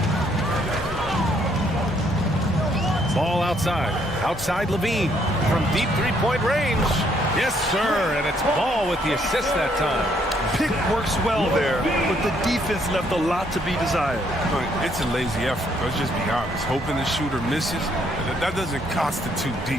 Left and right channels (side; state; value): both; normal; correlation 0.69